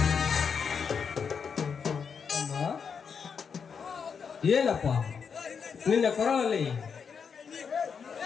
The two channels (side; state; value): right; quieter; 6.3 dB